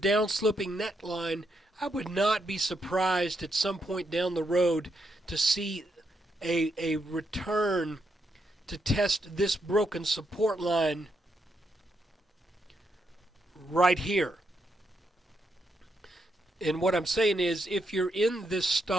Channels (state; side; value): normal; both; correlation 0.80